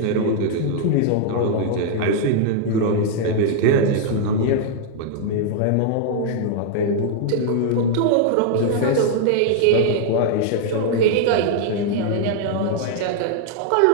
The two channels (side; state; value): both; different; correlation 0.00